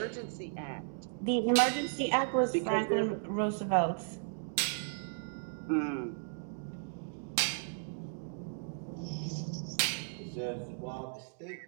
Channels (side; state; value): left; silent; digital silence